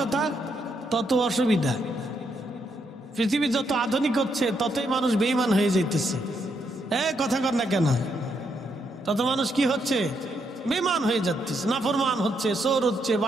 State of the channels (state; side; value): normal; both; correlation 0.77